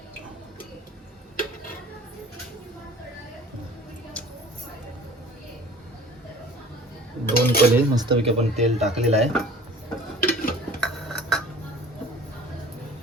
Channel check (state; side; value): normal; both; correlation 0.45